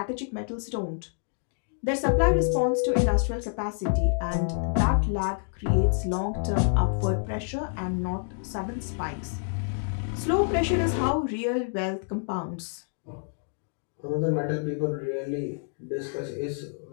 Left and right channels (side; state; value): right; silent; digital silence